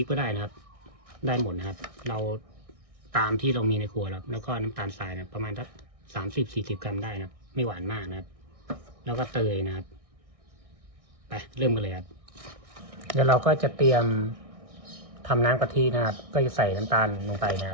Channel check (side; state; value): left; late; 1.6 ms